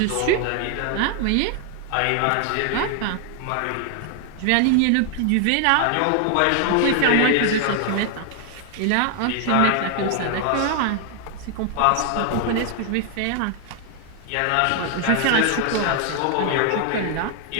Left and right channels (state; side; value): different; both; correlation 0.00